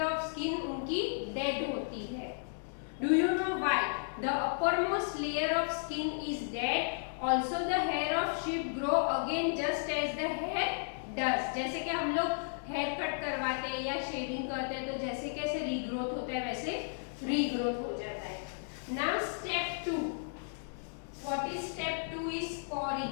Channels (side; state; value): right; silent; digital silence